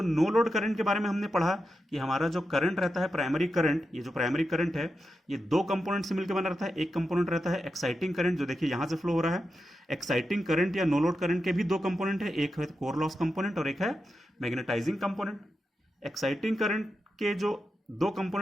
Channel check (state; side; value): normal; both; correlation 0.88